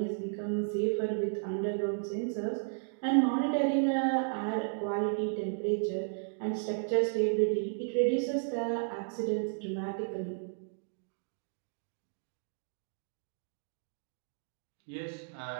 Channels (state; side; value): silent; left; digital silence